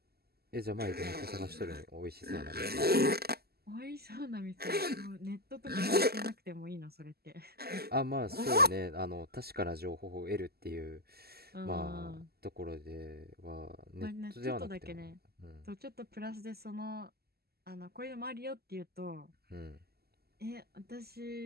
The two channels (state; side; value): late; left; 0.46 ms